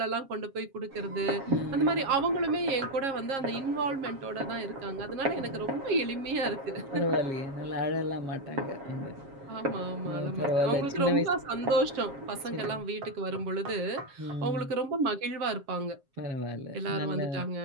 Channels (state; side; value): late; left; 7.4 ms